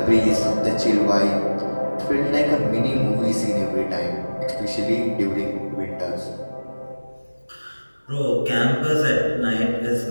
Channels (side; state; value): both; inverted; correlation -1.00